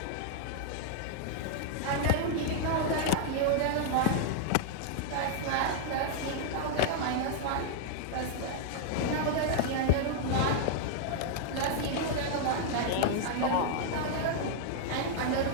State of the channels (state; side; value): different; both; correlation 0.00